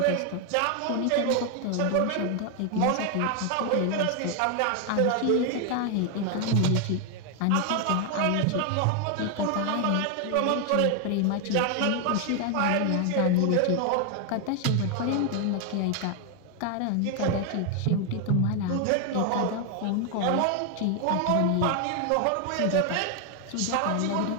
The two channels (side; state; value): both; different; correlation 0.01